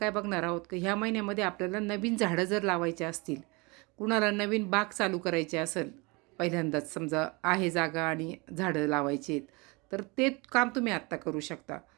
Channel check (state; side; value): quieter; left; 27.2 dB